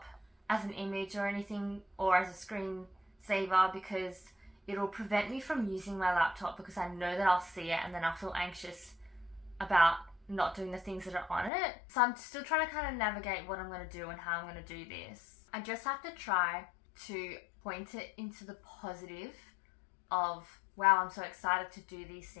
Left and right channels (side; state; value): right; drops out; at 11.5 s